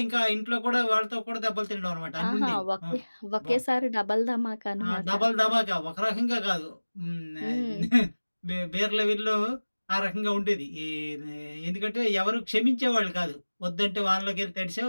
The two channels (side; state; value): both; inverted; correlation -1.00